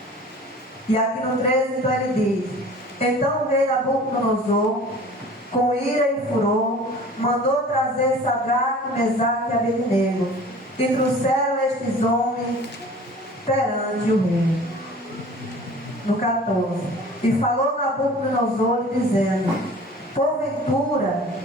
E aqui no 13 então ele diz: então o rei Nabucodonosor, com ira e furor, mandou trazer Sadraque, Mesaque e Abednego, e trouxeram estes homens perante o rei. No 14: e falou Nabucodonosor dizendo: porventura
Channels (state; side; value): normal; both; correlation 0.44